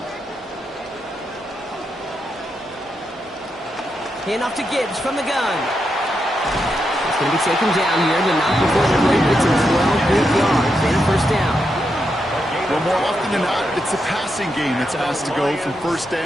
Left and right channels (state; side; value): normal; both; correlation 0.84